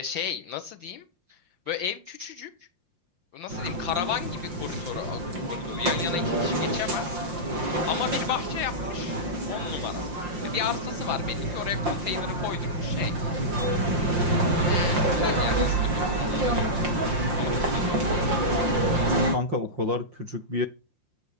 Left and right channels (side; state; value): left; late; 5.7 ms